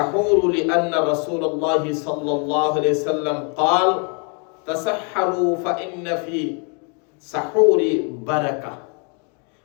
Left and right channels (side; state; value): right; quieter; 37.7 dB